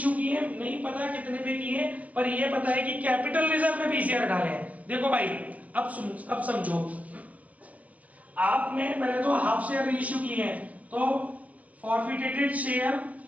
किए हैं, नहीं पता कितने पे किए हैं, पर ये पता है कि कैपिटल रिजर्व में 20 शेयर डाले हैं। देखो भाई अब समझो, आपने पहले तो हाफ शेयर रीइश्यू किए हैं, तो फॉरफिटेड शेयर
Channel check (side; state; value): left; late; 0.074 ms